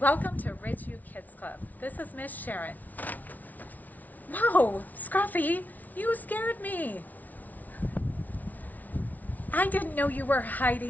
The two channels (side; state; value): right; late; 0.077 ms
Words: to Ridgeview Kids Club. This is Miss Sharon. Whoa, Scruffy, you scared me. I didn't know you were